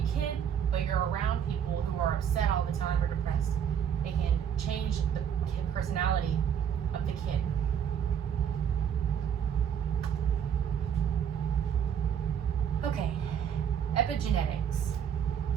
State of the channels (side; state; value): left; quieter; 8.4 dB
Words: kid, but you're around people who are upset all the time or depressed, it can change the personality of the kid. Okay, epigenetics.